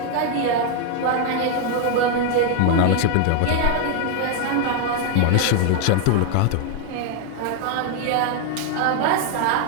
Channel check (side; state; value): both; different; correlation 0.01